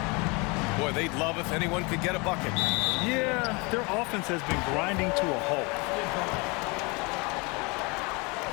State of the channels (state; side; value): quieter; right; 28.3 dB